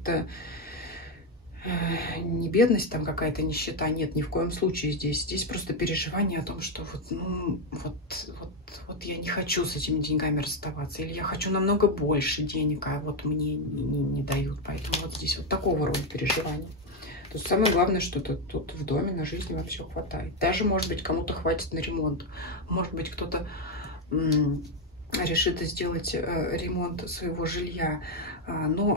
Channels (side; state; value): both; normal; correlation 0.06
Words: не бедность, там какая-то нищета, нет, ни в коем случае здесь. Здесь просто переживание о том, что вот я не хочу с этими деньгами расставаться, или я хочу намного больше денег, а вот мне не дают. Поэтому вот здесь вот такого рода переживания. То есть самое главное, что тут в доме на жизнь вам все хватает. Даже, может быть, кому-то хватит на ремонт. Может быть, кто-то решит сделать ремонт своего жилья.